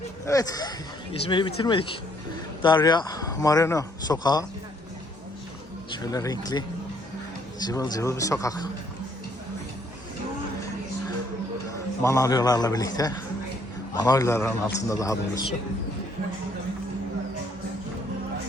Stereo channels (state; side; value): normal; both; correlation 0.67